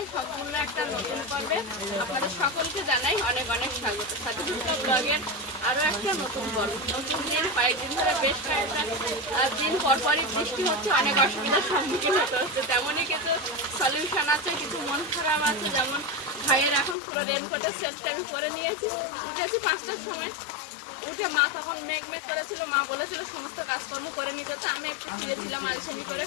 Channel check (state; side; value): drops out; right; at 16.9 s